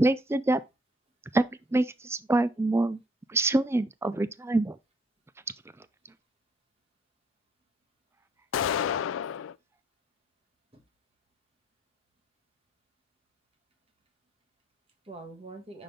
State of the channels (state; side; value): normal; both; correlation 0.67